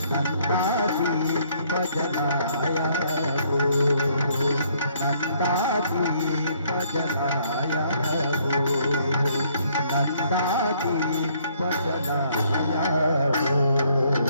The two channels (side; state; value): both; inverted; correlation -0.66